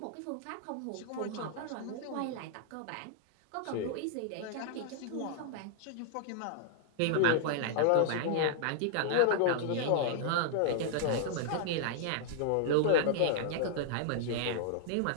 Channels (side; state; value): both; different; correlation -0.01